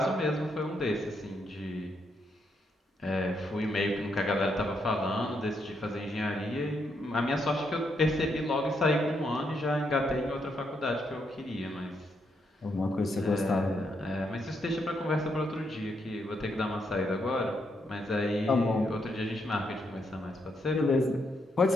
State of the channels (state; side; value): normal; both; correlation 0.78